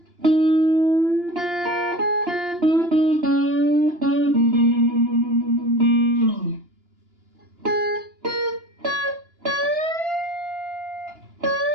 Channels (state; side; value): late; left; 2.8 ms